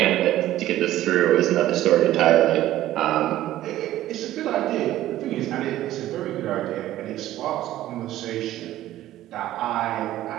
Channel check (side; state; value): left; quieter; 14.1 dB